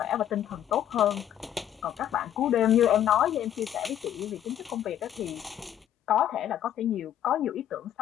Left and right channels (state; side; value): quieter; right; 10.8 dB